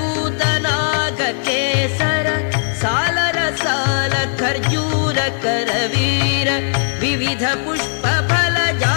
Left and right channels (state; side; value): silent; right; 68 dB below the other